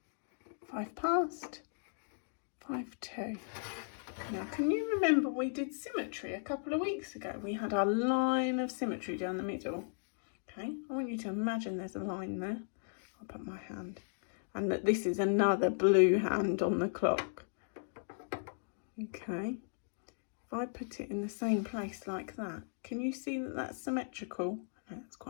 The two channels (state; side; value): silent; right; digital silence